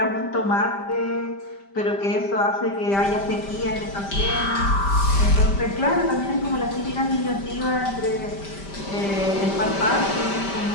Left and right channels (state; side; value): late; right; 5.1 ms